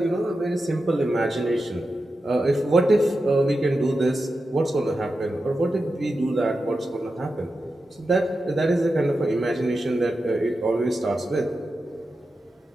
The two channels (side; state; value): both; normal; correlation 0.90